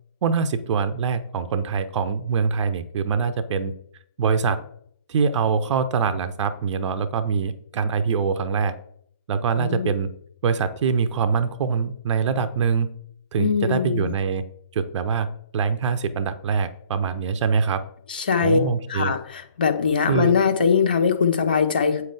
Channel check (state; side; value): inverted; both; correlation -0.55